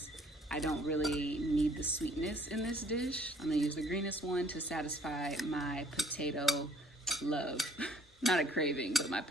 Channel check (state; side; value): normal; both; correlation 0.59